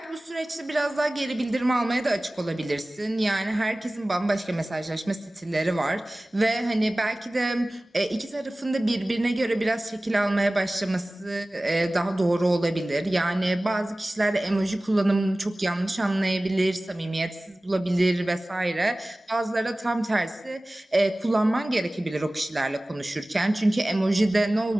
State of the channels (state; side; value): normal; both; correlation 0.98